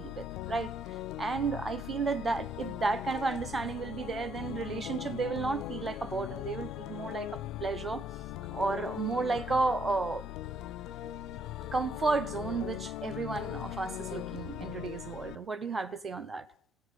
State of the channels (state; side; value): normal; both; correlation 0.69